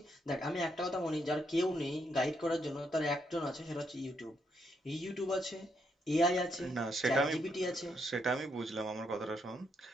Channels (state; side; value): normal; both; correlation 0.77